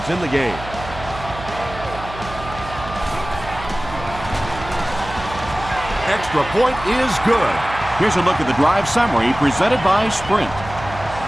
in the game. Extra point is good. Here's a look at the drive summary presented by Sprint.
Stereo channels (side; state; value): right; noise; hum, 12 dB below the sound